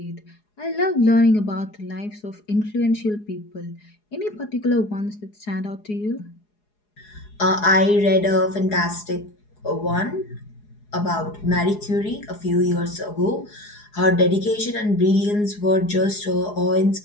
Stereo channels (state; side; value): late; right; 4.8 ms